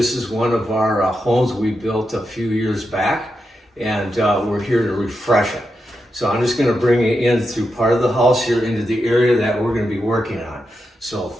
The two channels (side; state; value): both; normal; correlation 0.87